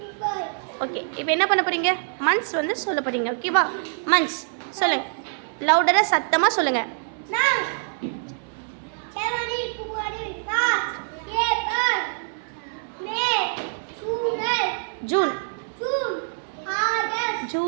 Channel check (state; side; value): silent; left; 62 dB below the other